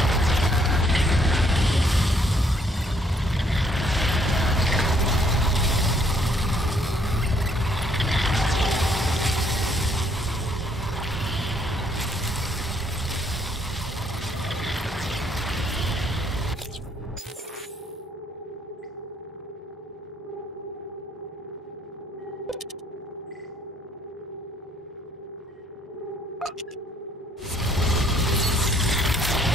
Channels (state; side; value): normal; both; correlation 0.66